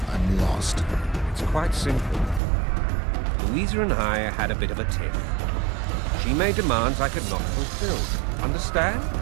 I'm lost. It's quite simple. Louisa and I had a bit of a tiff. She made demands I could not fulfill. Understand?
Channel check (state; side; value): drops out; left; at 2.4 s